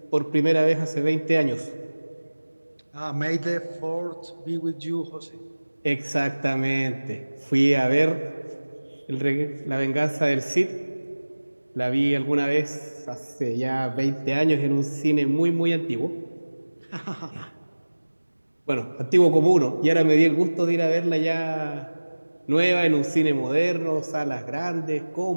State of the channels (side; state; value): both; inverted; correlation -1.00